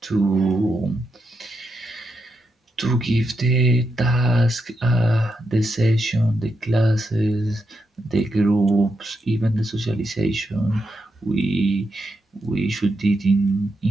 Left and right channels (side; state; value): both; normal; correlation 0.84